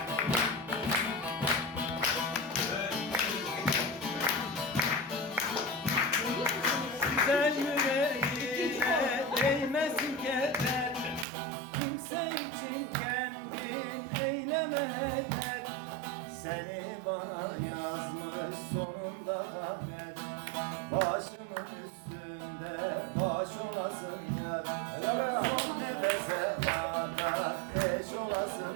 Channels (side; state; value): left; drops out; at 11.2 s